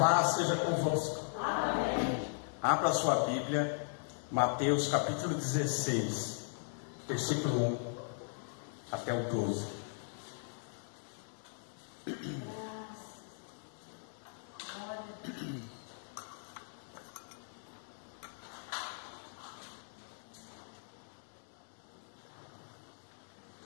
seja convosco. Amém. Abra sua Bíblia, Mateus capítulo 16, versículo 1 até o 12.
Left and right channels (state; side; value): silent; right; 52 dB below the other